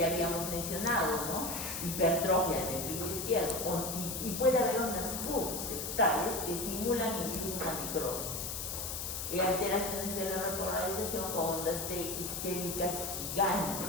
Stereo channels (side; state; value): left; noise; hiss, 4 dB below the sound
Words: habíamos mencionado, ¿no?, hipertrofia del ventrículo izquierdo, y puede haber ondas Q septales que simulan incluso una necrosis. Alteraciones de la repolarización con ondas T isquémicas